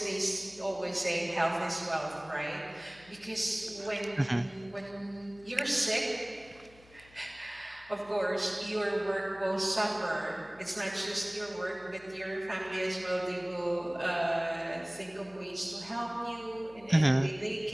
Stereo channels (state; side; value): noise; left; hum, 25 dB below the sound